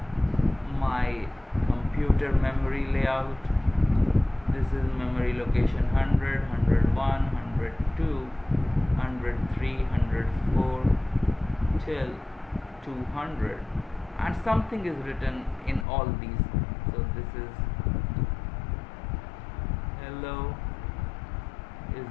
my computer memory layout. This is memory location 100, 101, 102, 103, 104 till 200, and something is written in all these. So this is hello is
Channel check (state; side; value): drops out; right; at 15.9 s